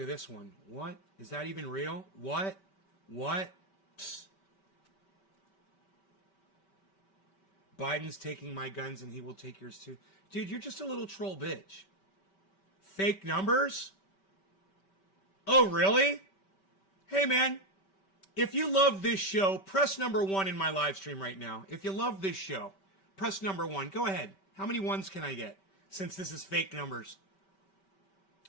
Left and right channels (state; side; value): late; right; 5.2 ms